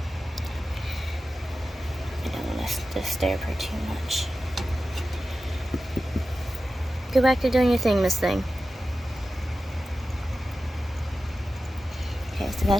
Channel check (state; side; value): normal; both; correlation 0.93